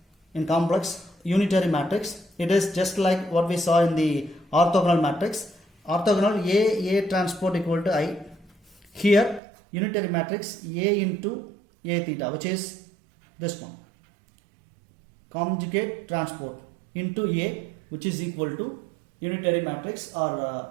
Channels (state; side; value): drops out; left; at 9.4 s